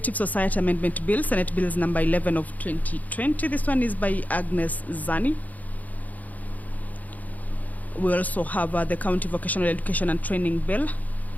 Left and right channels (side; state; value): right; late; 0.078 ms